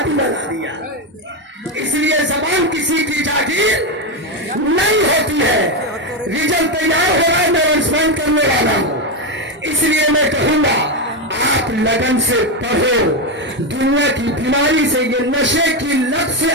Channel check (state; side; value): normal; both; correlation 0.09